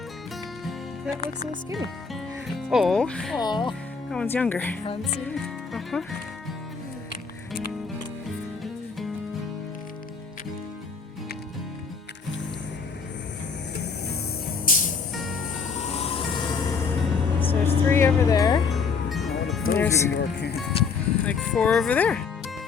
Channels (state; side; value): quieter; right; 5.3 dB